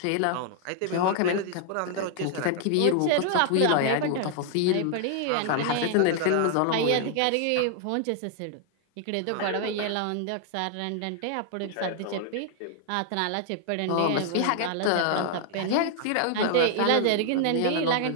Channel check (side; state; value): both; different; correlation 0.00